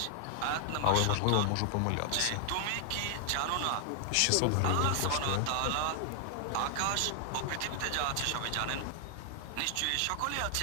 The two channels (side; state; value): both; different; correlation 0.00